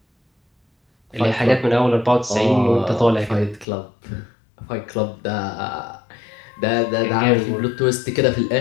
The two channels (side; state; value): right; drops out; at 3.7 s